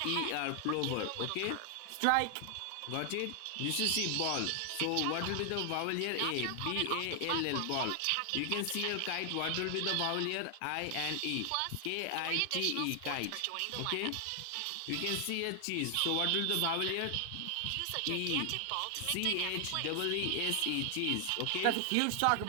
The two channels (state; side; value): different; both; correlation 0.00